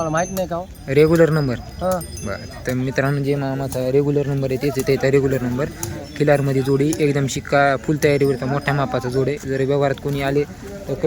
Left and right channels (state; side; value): identical; both; correlation 1.00